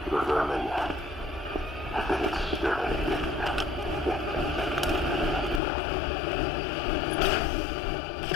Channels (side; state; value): right; drops out; at 5.6 s